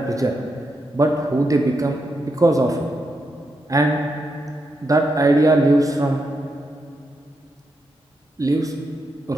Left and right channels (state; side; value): normal; both; correlation 0.83